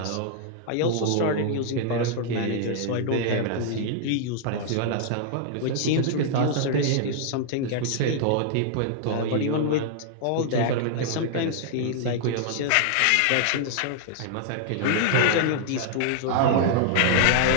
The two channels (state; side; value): different; both; correlation -0.01